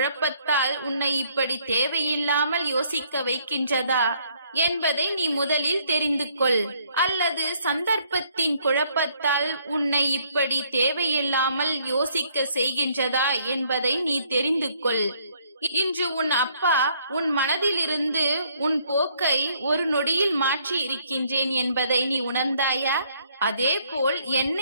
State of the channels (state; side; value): inverted; both; correlation -0.66